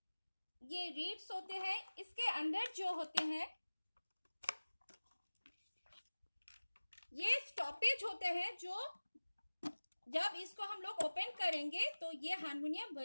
ये रीड्स होते हैं। इसके अंदर जो होते हैं स्टॉपेज होते हैं जो जब इसको हम लोग ओपन करेंगे तो ये हारमोनियम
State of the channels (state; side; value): inverted; both; correlation -1.00